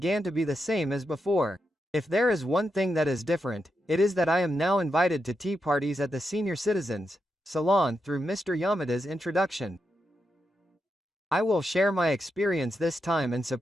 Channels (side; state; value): both; normal; correlation 0.85